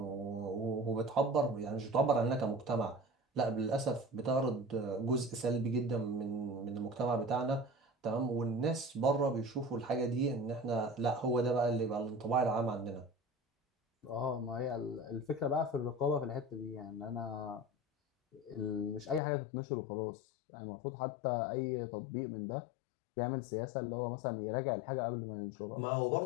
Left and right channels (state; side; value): drops out; right; at 19.2 s